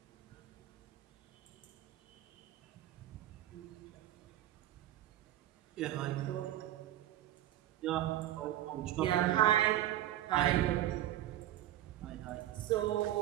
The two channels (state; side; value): quieter; left; 13.0 dB